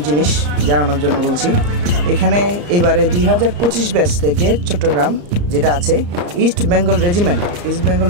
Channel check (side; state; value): left; late; 34 ms